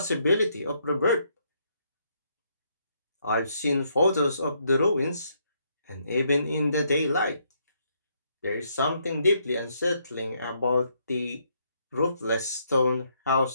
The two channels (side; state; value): both; inverted; correlation -0.73